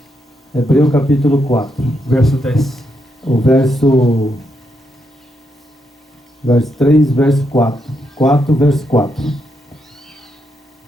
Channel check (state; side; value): normal; both; correlation 0.80